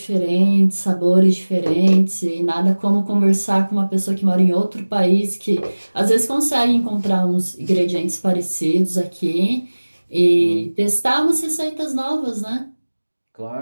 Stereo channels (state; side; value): inverted; both; correlation -1.00